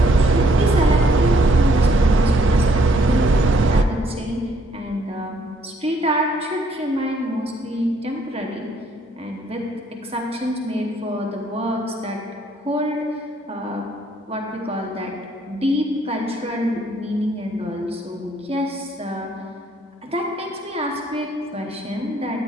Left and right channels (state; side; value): normal; both; correlation 0.67